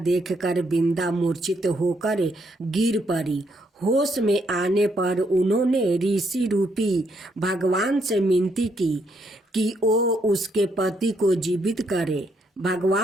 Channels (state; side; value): normal; both; correlation 0.74